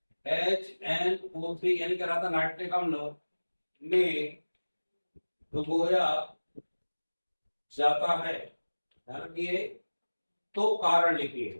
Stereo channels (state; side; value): inverted; both; correlation -1.00